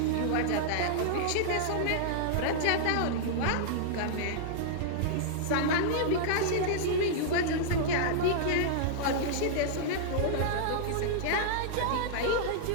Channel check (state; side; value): different; both; correlation -0.02